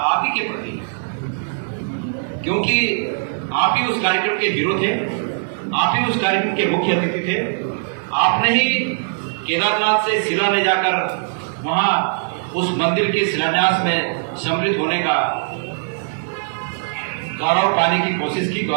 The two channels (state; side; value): silent; left; digital silence